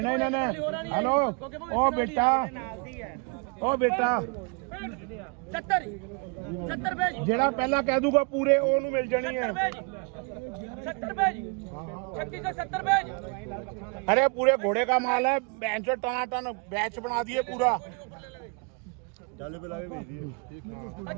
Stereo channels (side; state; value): left; quieter; 33.4 dB